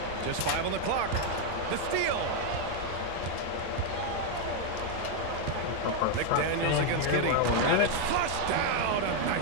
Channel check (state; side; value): different; both; correlation 0.01